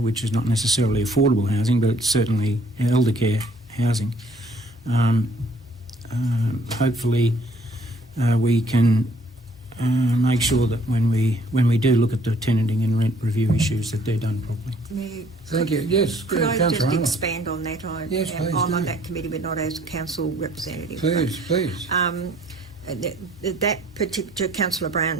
which is not necessarily affordable housing, but it's certainly elder care housing. Hopefully we can make sure that when we do look at the tenanting and rent review issues, that they're done properly. Thank you. Yes, Could I just Councillor Arnold. expand on that? Yes, please I'm on do. that committee, but not as council representative. Please. That particular Councillor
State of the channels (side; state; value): both; normal; correlation 0.60